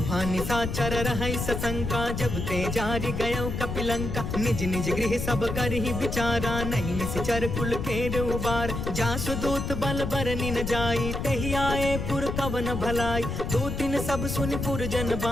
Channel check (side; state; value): left; noise; rumble, 4 dB below the sound